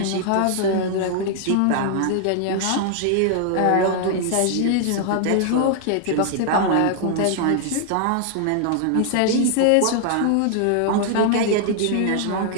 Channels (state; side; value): different; both; correlation 0.00